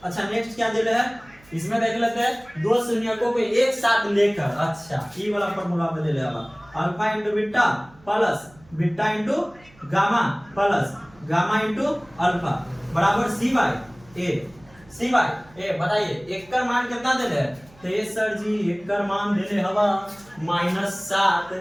अच्छा नेक्स्ट क्या दे रहे हैं इसमें देख लेते हैं, दो शून्यकों को एक साथ लेकर, अच्छा ई वाला फॉर्मूला पे ले लेगा alpha into beta plus beta into gamma plus gamma into alpha बराबर सी बाई ए। बताइए एक का मान कितना दे रहे, तो ये सर जी एक का मान दे रहे हवा -7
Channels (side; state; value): right; noise; hum, 27 dB below the sound